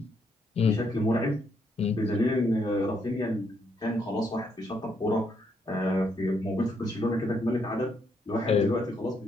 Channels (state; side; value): normal; both; correlation 0.75